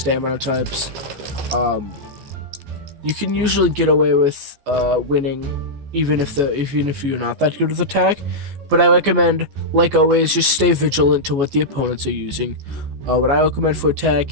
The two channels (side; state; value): left; late; 14 ms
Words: types. You can usually get away with winning, even if you're not that good with attack. But I recommend, like always, just stay vigilant to what the opponents are using. What I recommend for